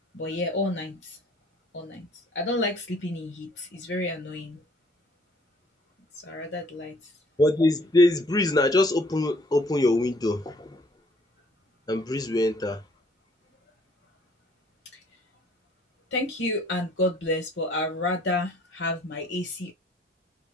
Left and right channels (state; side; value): normal; both; correlation 0.59